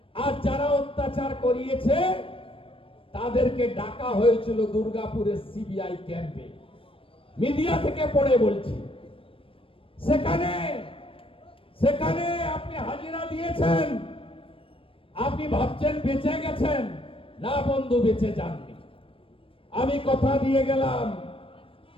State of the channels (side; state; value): right; late; 0.26 ms